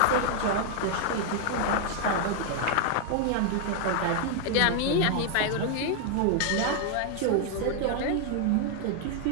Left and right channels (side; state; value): both; different; correlation 0.00